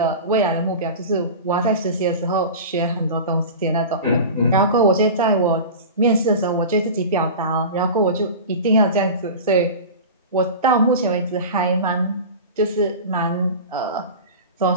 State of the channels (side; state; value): both; inverted; correlation -0.31